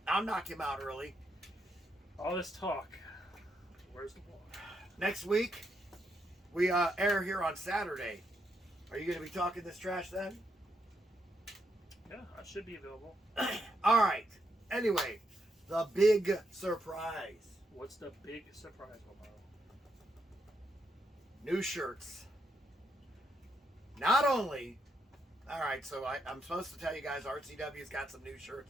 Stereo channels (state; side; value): normal; both; correlation 0.79